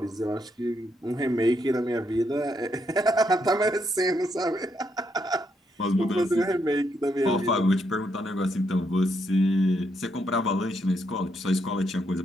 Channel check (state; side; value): normal; both; correlation 0.77